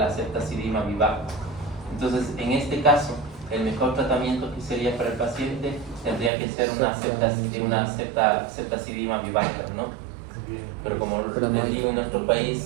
ceftazidima vivax. Entonces, en este caso, el mejor tratamiento que sería para el paciente tendría que ser una ceftazidima vivax, ¿no? Pero como les digo, en nuestro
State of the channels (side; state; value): left; drops out; at 6.3 s